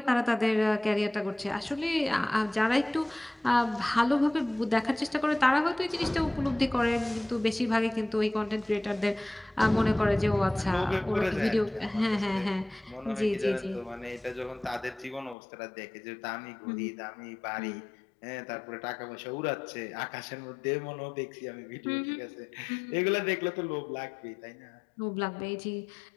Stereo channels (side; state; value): right; drops out; at 15.4 s